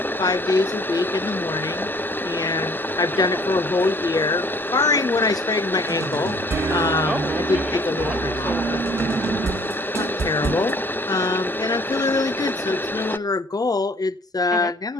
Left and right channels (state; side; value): normal; both; correlation 0.56